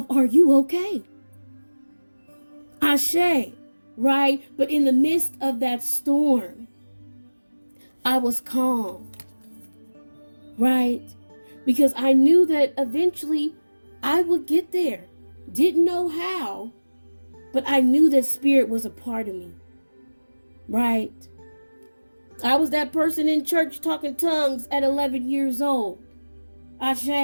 are you okay? Ashe, right? But in the midst of that storm, I was calm. Right? Because I knew that eventually I would get there. Didn't know how, but I knew that spirit was a part of me. Right? I was that person in church talking tongues at 11 years old.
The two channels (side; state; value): both; inverted; correlation -1.00